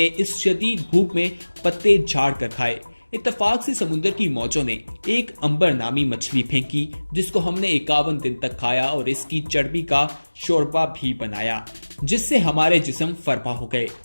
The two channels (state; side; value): inverted; both; correlation -1.00